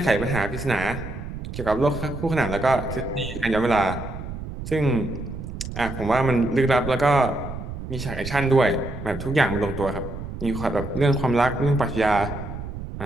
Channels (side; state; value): right; noise; rumble, 8 dB below the sound